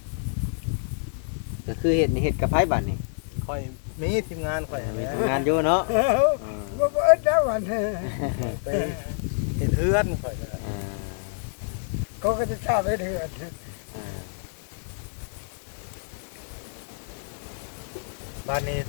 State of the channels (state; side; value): silent; right; 60 dB below the other